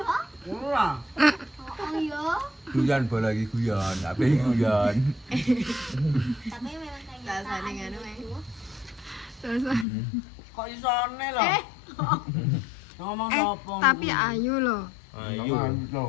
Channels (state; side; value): drops out; right; at 9.9 s